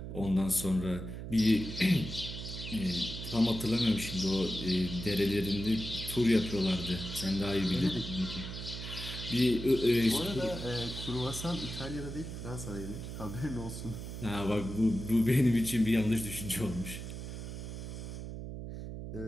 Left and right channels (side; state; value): right; noise; hum, 8 dB below the sound